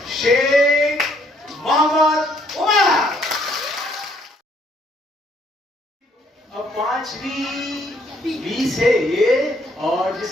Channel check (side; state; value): both; normal; correlation 0.67